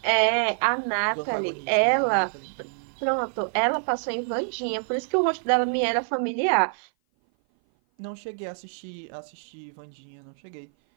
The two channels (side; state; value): left; silent; 57 dB below the other